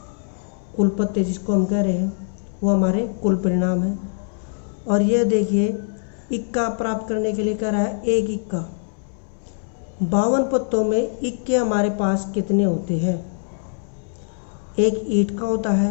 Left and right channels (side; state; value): right; silent; 64 dB below the other